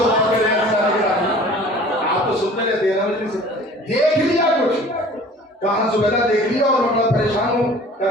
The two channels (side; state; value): both; normal; correlation 0.47